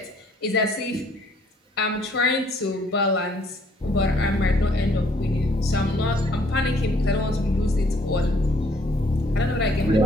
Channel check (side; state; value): both; normal; correlation 0.63